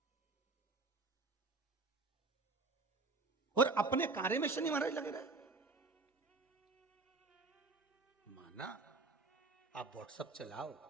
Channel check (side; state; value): left; quieter; 3.7 dB